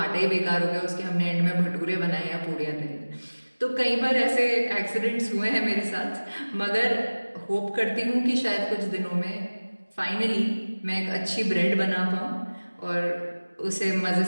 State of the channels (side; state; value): both; inverted; correlation -1.00